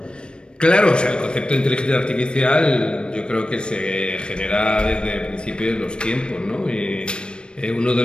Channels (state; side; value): late; right; 0.055 ms